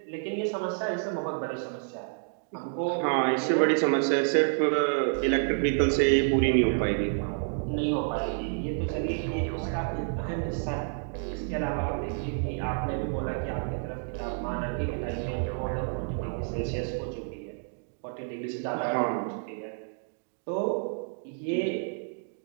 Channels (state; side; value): silent; left; 58 dB below the other